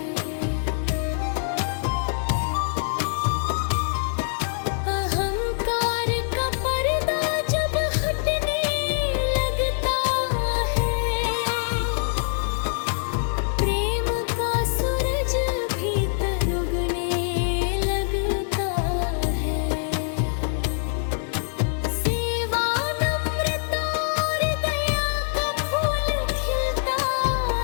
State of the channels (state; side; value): silent; right; digital silence